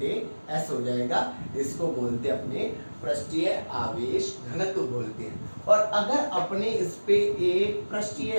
S हो जाएगा। इसको बोलते हैं अपने पृष्ठीय आवेश घनत्व बोलते हैं। और अगर अपने इस पे एक पृष्ठीय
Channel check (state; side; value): inverted; both; correlation -1.00